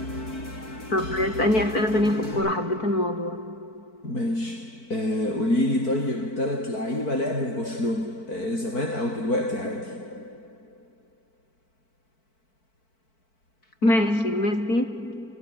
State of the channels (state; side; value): late; right; 4.5 ms